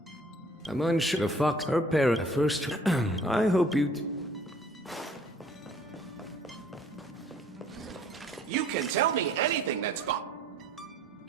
I'm unsure the fox, her parent, first... I hope you... You can tell me anything that's gone.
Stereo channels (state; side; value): normal; both; correlation 0.55